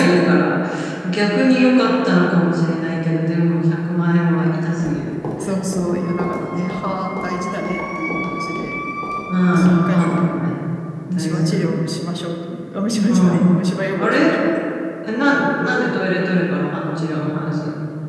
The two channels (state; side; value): identical; both; correlation 1.00